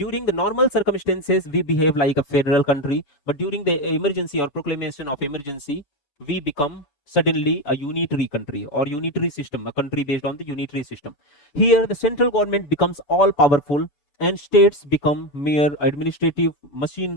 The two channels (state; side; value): late; right; 6.9 ms